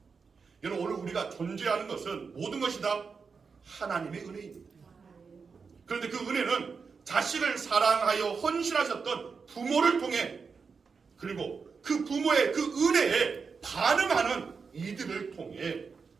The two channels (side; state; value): left; quieter; 5.3 dB